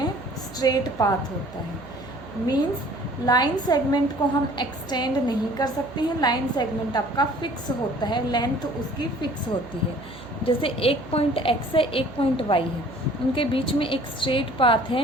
स्ट्रेट पाथ होता है। मीन्स लाइन सेगमेंट को हम एक्सटेंड नहीं कर सकते हैं, लाइन सेगमेंट आपका फिक्स होता है, लेंथ उसकी फिक्स होती है। जैसे एक पॉइंट एक्स है, एक पॉइंट वाई है, उनके बीच में एक स्ट्रेट पाथ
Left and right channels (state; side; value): noise; right; hum, 19 dB below the sound